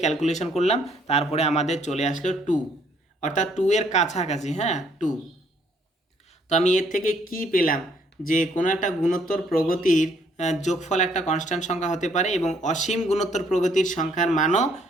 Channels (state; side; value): normal; both; correlation 0.66